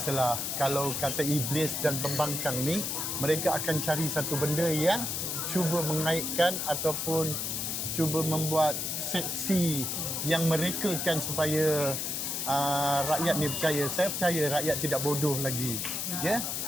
kalau kata iblis dan pembangkang ni, mereka akan cari satu benda yang cuba mengaitkan ataupun cuba membuat seksi yang merekakan supaya rakyat ni percaya. Saya percaya rakyat tidak bodoh lagi. Ya.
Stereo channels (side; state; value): left; noise; hiss, 2 dB below the sound